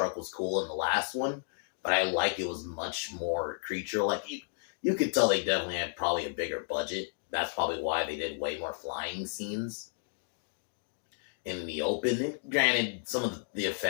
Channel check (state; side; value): silent; right; digital silence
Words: was cool in the last one, but I like it was much more creature-like. You could tell they definitely had probably a bigger budget. That's probably why they did way more flying scenes in the open. And granted, some of the